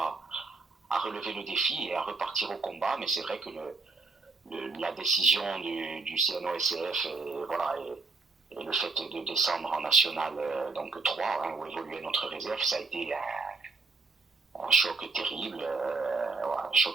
relever le défi et à repartir au combat. Mais c'est vrai que la décision du CNOSF voilà, et le fait de descendre en National donc 3, hein, où évoluait notre réserve, ça a été un choc terrible. Un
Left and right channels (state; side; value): quieter; left; 3.9 dB